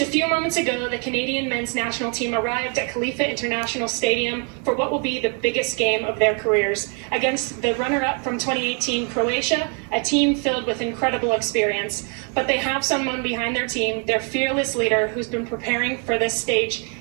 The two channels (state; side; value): quieter; left; 38.5 dB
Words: a few moments ago, the Canadian men's national team arrived at Khalifa International Stadium for what will be the biggest game of their careers against the runner-up from 2018 Croatia, a team filled with incredible experience. But they have someone behind their team, their fearless leader, who's been preparing for this stage